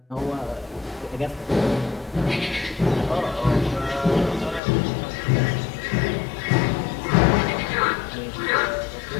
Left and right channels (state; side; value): drops out; right; at 4.6 s